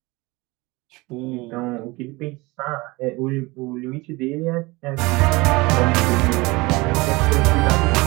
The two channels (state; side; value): quieter; left; 23.3 dB